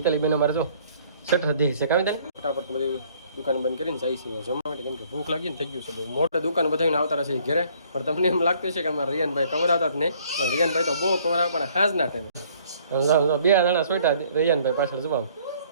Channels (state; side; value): inverted; both; correlation -0.60